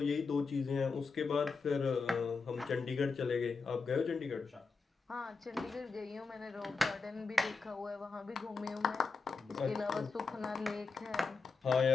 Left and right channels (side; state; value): right; quieter; 4.6 dB